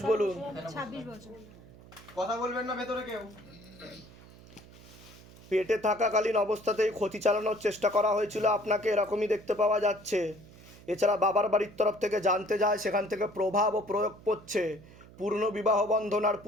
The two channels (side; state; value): right; noise; hum, 21 dB below the sound